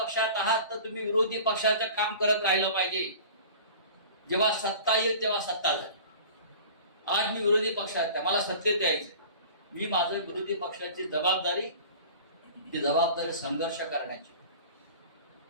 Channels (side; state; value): both; inverted; correlation -0.41